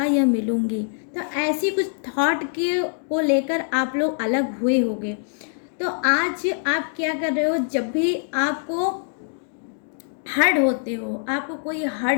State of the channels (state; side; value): silent; right; digital silence